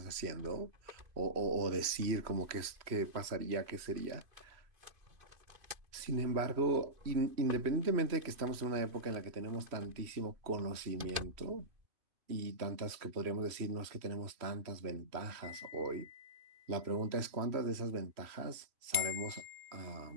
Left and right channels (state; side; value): late; left; 3.0 ms